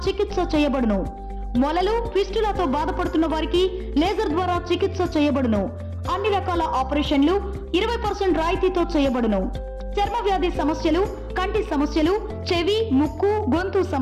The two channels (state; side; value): identical; both; correlation 1.00